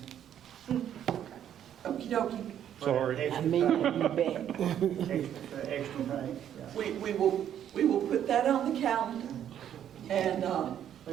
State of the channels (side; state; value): left; quieter; 10.1 dB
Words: Okey dokey. Sorry. I mean, you bet. Extra pay, yeah. We will put that on the calendar. And,